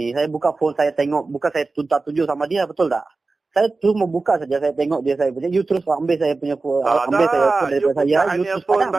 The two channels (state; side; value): quieter; left; 3.7 dB